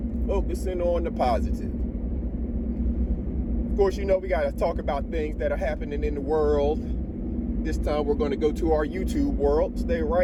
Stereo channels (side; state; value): both; identical; correlation 1.00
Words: Focusing on the positive. Of course, you know we got to talk about things that are happening in the world. This time we're going to go to our YouTube world. Stay